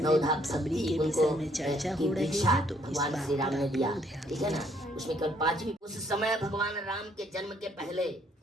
में, सबरी के विषय में चर्चा हो रही है, तो इस बात पर आप लोग ध्यान दीजिए। उसमें कल 5वीं। उस समय भगवान राम के जन्म के पहले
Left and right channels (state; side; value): normal; both; correlation 0.67